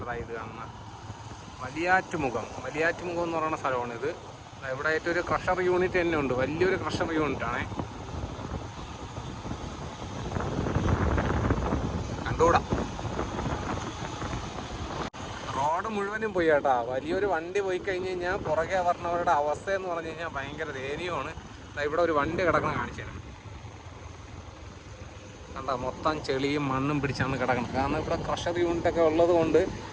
ഇത് കാണുന്നത്. വലിയാറ്റുമുഖം എന്ന് പറയുന്ന സ്ഥലമാണ് ഇത്. ഇവിടെ ആയിട്ട് ഒരു ക്രഷർ യൂണിറ്റ് തന്നെ ഉണ്ട്, വലിയൊരു ക്രഷർ യൂണിറ്റാണ്. കണ്ടുകൂടാ, റോഡ് മുഴുവനും പോയി കേട്ടോ. വലിയൊരു വണ്ടി പോയി കഴിഞ്ഞ് കഴിഞ്ഞാൽ പുറകെ പറഞ്ഞവരുടെ അവസ്ഥ എന്ന് പറഞ്ഞു കഴിഞ്ഞാൽ ഭയങ്കര ദയനീയമാണ്. ഇവിടെ ഒരു വണ്ടി കിടക്കണം കാണിച്ചു തരാം. കണ്ട, മൊത്തം ചെളിയും മണ്ണും പിടിച്ചാണ് കിടക്കുന്നത്. കാരണം ഇവിടെ ക്രഷർ യൂണിറ്റൊക്കെ ഉള്ളത് കൊണ്ട്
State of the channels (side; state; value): both; identical; correlation 1.00